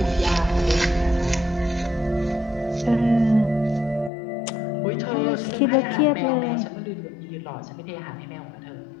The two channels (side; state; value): right; drops out; at 4.1 s